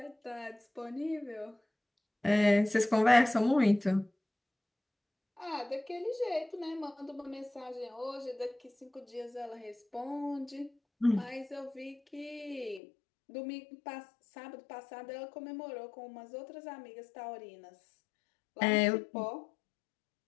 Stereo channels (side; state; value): right; drops out; at 12.8 s